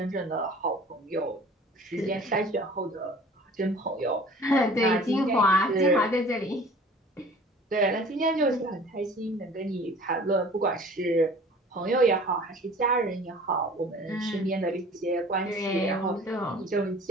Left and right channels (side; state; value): both; normal; correlation 0.46